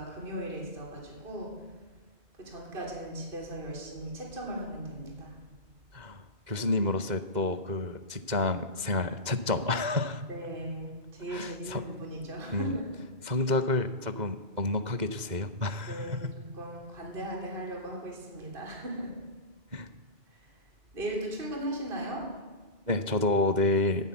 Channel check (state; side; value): late; left; 2.0 ms